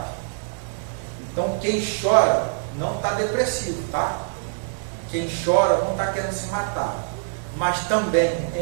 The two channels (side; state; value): left; silent; digital silence